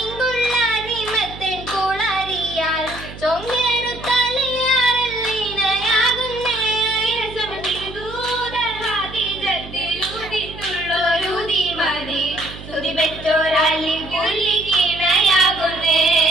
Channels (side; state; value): right; noise; hum, 14 dB below the sound